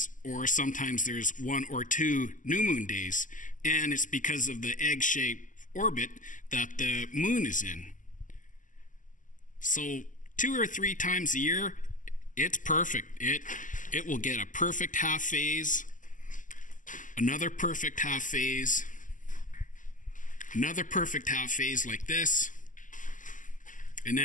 or sometimes there's 1 or 2 new moon days. And it's because of the egg-shaped orbit that the moon is in. So 2 or 3 times a year, it's perfect. It will get a perfect half phase, another perfect half phase, another perfect half phase like this, and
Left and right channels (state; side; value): late; right; 0.37 ms